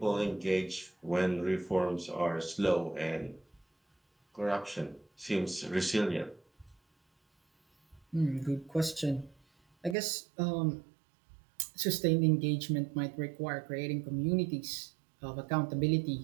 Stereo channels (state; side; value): drops out; left; at 10.0 s